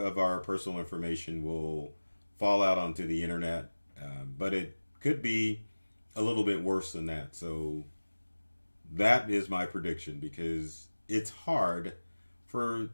our personal information will fall out onto the internet. But it could be a little bit worse than that. So that is my prediction, because it's hard for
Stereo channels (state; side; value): inverted; both; correlation -1.00